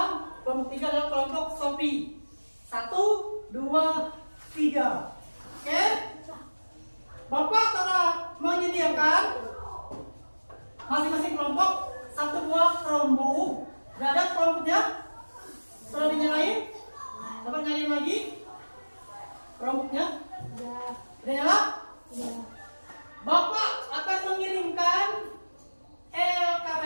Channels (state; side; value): inverted; both; correlation -1.00